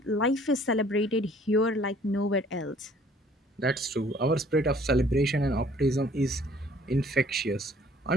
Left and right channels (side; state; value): both; normal; correlation 0.57